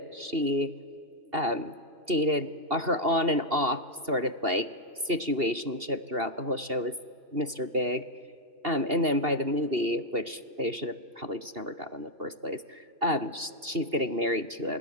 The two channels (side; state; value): left; late; 2.7 ms